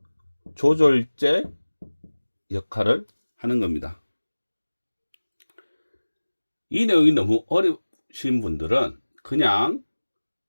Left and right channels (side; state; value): both; inverted; correlation -1.00